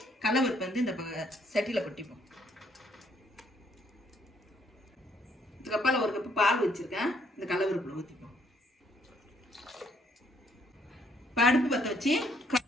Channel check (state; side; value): normal; both; correlation 0.68